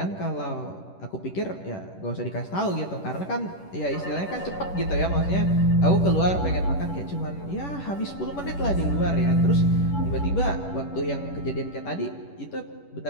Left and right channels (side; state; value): right; late; 11 ms